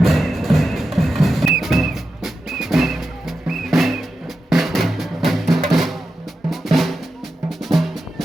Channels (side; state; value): both; normal; correlation 0.90